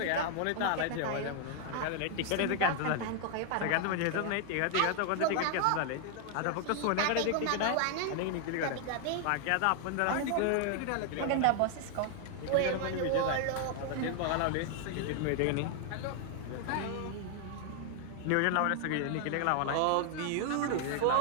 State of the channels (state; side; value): different; both; correlation 0.00